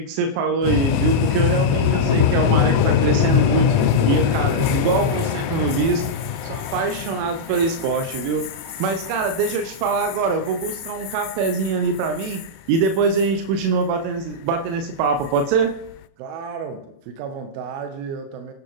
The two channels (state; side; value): late; left; 36 ms